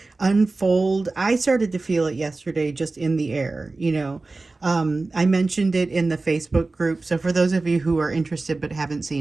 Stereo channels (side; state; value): left; quieter; 3.4 dB